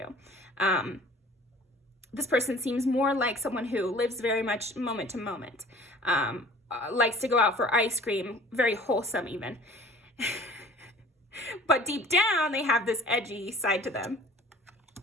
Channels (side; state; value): both; normal; correlation 0.48